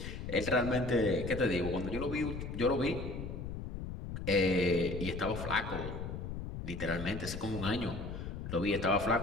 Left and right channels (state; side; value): noise; left; rumble, 7 dB below the sound